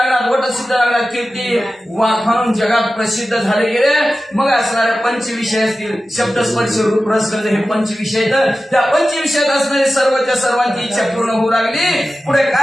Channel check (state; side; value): normal; both; correlation 0.94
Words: वटसिद्ध नागनाथ कीर्ती वाखाणून जगात प्रसिद्ध झाले गेले. मग असणारे पंचविषय असतील, शब्दस्पर्श रूप रस गंध हे पंचविषय. तर त्या पंचविषयात असणारे सर्वच्या सर्वांची इच्छा पूर्ण होऊ लागली. पुढे